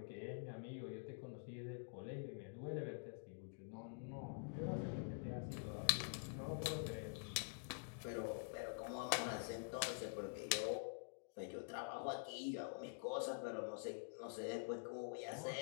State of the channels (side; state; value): right; silent; digital silence